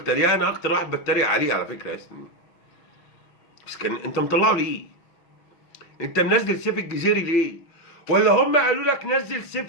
تريقه، انا اكتر واحد بتريق عليه على فكره يا سنين. بس كان انت مطلعه ليه؟ انت منزل سيف الجزيري ليه؟ ولا هم قالوا لك نزل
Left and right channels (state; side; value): late; right; 6.2 ms